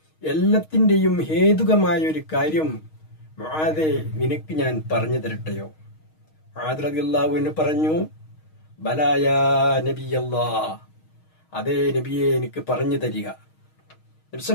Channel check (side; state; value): right; late; 6.4 ms